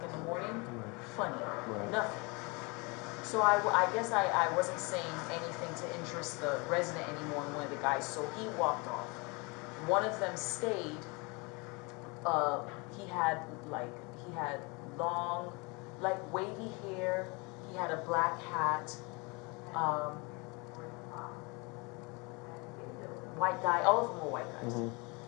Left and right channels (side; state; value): right; quieter; 28.6 dB